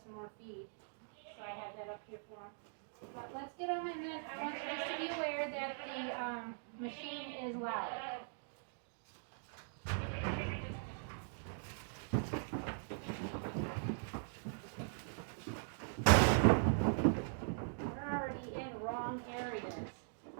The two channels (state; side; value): silent; left; digital silence